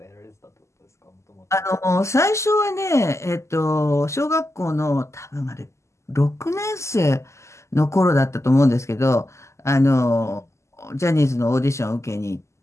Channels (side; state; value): right; late; 0.13 ms